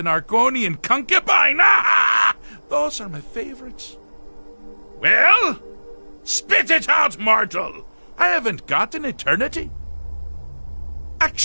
Argonian concubine. Those are my favorites. Well, spit it out, mortal. I haven't got an eternity.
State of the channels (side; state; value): both; inverted; correlation -1.00